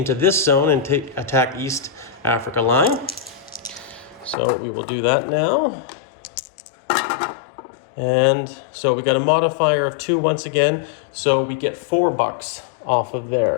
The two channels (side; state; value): right; drops out; at 4.4 s